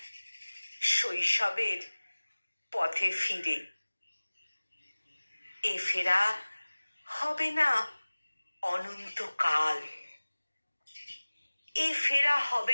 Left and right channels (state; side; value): inverted; both; correlation -1.00